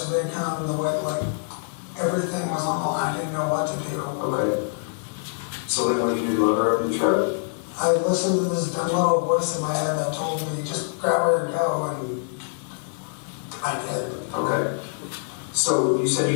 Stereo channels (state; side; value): silent; right; digital silence